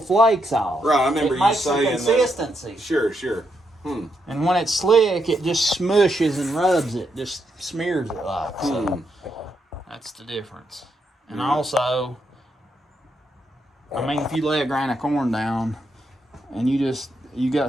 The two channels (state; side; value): normal; both; correlation 0.80